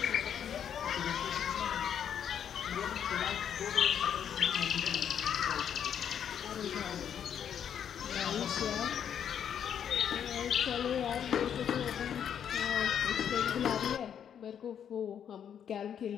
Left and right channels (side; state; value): right; quieter; 8.7 dB